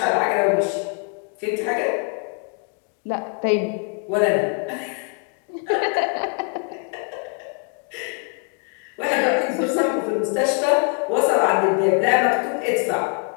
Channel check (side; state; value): right; quieter; 39.3 dB